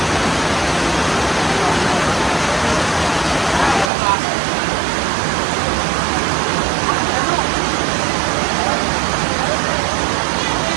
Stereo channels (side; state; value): left; drops out; at 3.9 s